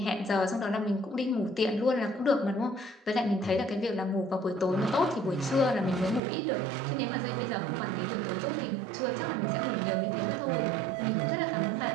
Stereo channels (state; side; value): drops out; left; at 6.2 s